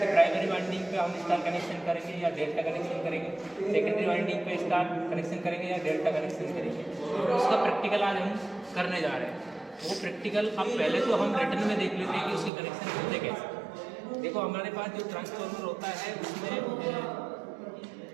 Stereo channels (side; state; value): left; drops out; at 12.5 s